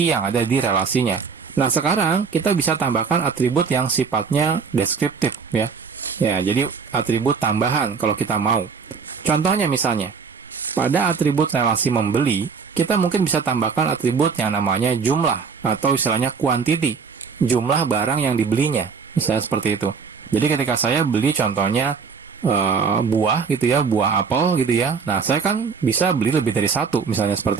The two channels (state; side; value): quieter; left; 5.6 dB